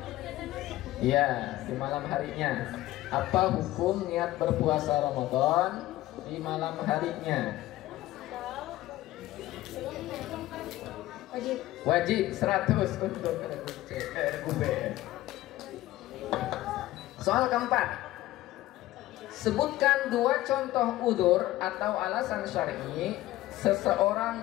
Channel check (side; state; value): right; quieter; 16.1 dB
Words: Ya, di malam harinya. Apa hukum niat berpuasa Ramadan di malam harinya? Wajib 100 untuk regu B. Soal keempat. Sebutkan 2 contoh udzur atau alasan syar'i seseorang